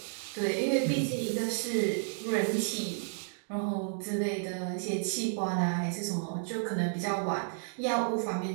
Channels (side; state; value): left; silent; digital silence